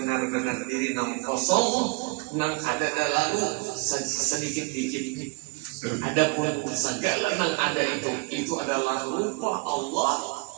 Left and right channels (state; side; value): quieter; left; 28.8 dB